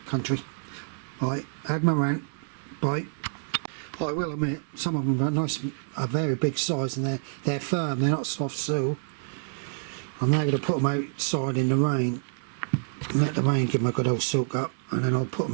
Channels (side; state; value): left; silent; digital silence